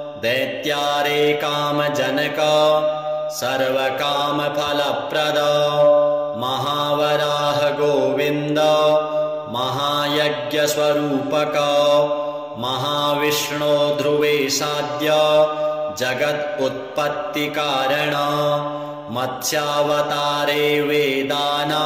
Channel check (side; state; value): both; identical; correlation 1.00